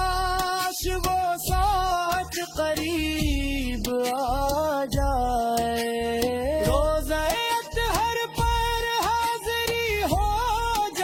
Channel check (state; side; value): identical; both; correlation 1.00